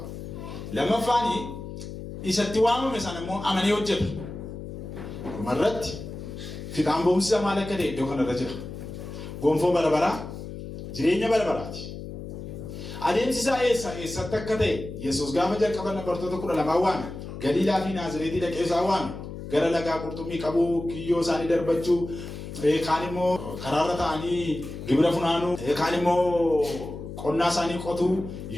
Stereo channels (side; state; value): left; noise; hum, 10 dB below the sound